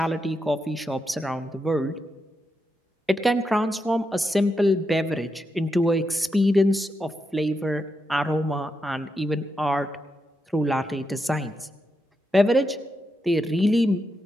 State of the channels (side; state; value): both; normal; correlation 0.85